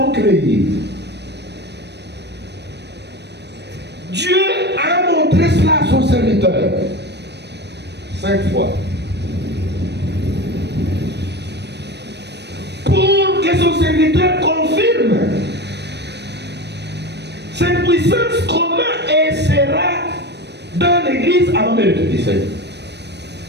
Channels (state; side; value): late; left; 0.50 ms